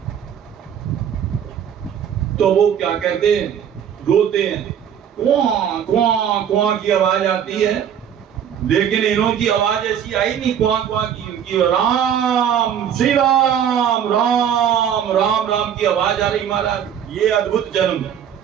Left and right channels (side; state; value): left; quieter; 8.9 dB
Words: तो वो क्या कहते हैं, रोते हैं, क्वां क्वां क्वां की आवाज आती है, लेकिन इन्हों की आवाज ऐसी आई नहीं क्वां क्वां की, उनकी राम श्री राम राम राम राम की आवाज आ रही महाराज। ये अद्भुत जन्म है,